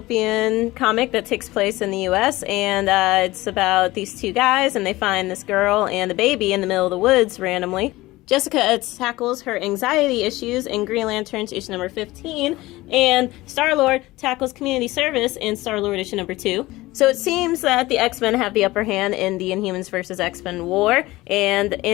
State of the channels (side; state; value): right; quieter; 19.0 dB